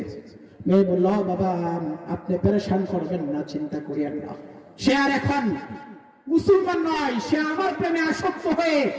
মেয়ে বলল, বাবা আপনি পেরেশান করবেন না, চিন্তা করিয়েন না, সে আর এখন মুসলমান নয়, সে আমার প্রেমে আসক্ত হয়ে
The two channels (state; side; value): identical; both; correlation 1.00